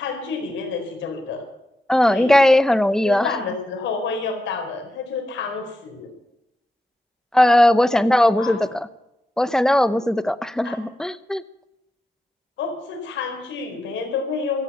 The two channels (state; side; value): normal; both; correlation 0.88